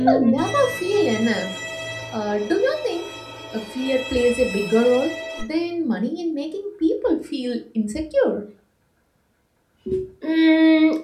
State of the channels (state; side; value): identical; both; correlation 1.00